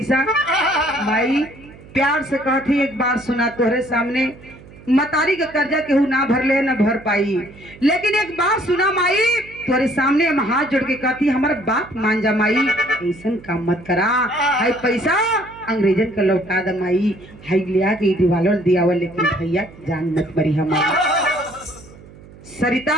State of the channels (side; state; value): right; noise; hum, 21 dB below the sound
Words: माई प्यार से कहती, एक बार सुना तोहरे सामने, मतारी का कर्जा केहू ना भर ले ना भर पाई, लेकिन एक बात सुना माई, तोरे सामने हम हाथ जोड़ के कहती, हमारा बात मान जा माई, ऐसा काम मत करा, हाई पैसा अंग्रेजन का लौटा द माई, हाई लिया के दिवालों दियावा, लेकिन भैया जान मत मरी हमारा।